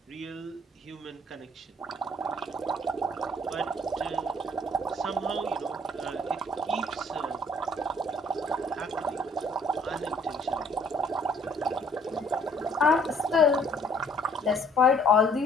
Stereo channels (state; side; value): normal; both; correlation 0.60